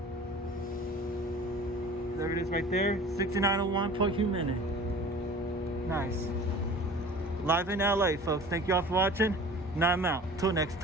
There it is right there, 6901 per minute. Nice. Live in LA, folks. Thank you all for watching. Now I'm out. Till next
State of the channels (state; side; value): normal; both; correlation 0.43